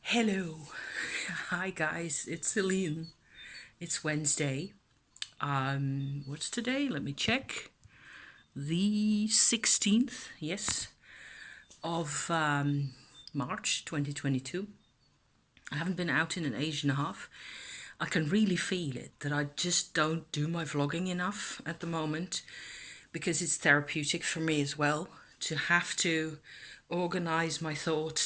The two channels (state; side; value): identical; both; correlation 1.00